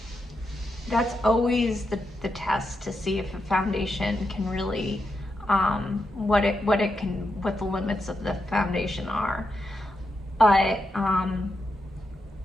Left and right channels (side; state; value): both; normal; correlation 0.85